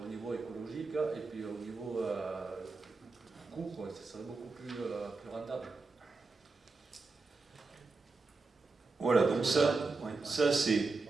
au niveau écologique et puis au niveau coût, ça serait beaucoup plus rentable. Voilà, donc ça c'est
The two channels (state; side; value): quieter; left; 3.9 dB